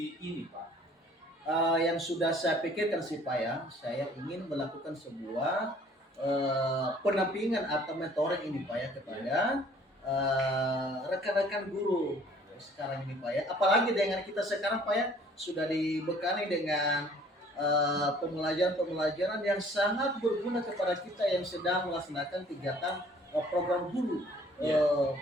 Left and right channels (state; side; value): normal; both; correlation 0.55